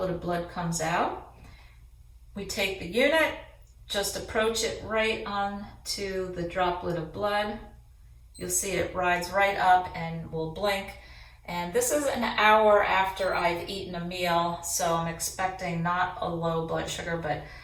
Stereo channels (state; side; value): identical; both; correlation 1.00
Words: of blood comes out. We take the unit, just approach it right on to the droplet of blood. You'll see it rides right up and will blink. And this is an hour after I've eaten a meal, so I'm expecting not a low blood sugar, but